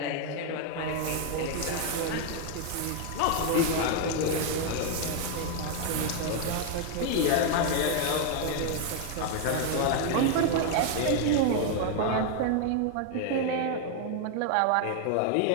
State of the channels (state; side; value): different; both; correlation 0.00